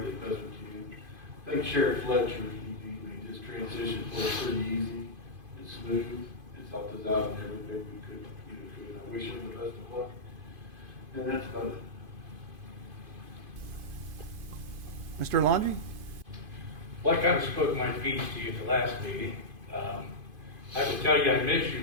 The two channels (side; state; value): left; late; 2.5 ms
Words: as best we can. Thank Sheriff Fletcher. He made this transition for us pretty easy and smooth. It's helped us out in everything we could. I wish him the best of luck. And that's about it. Mr. Laundrie? Well, I kind of spoke my piece to you at the last meeting. I will tell you I miss you,